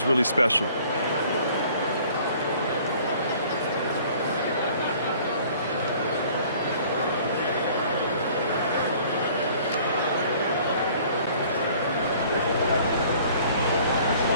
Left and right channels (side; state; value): both; inverted; correlation -0.53